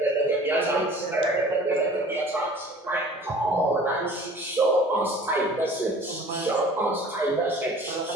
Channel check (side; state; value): both; normal; correlation 0.47